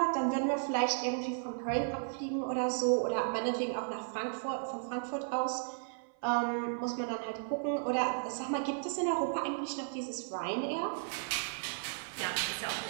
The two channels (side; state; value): left; silent; 55 dB below the other